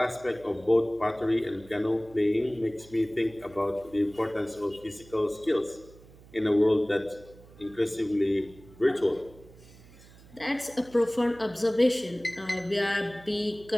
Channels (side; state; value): right; noise; hum, 23 dB below the sound